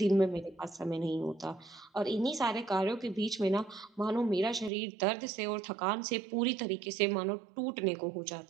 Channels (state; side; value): drops out; left; at 4.7 s